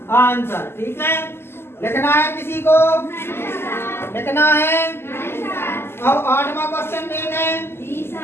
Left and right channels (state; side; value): late; right; 0.12 ms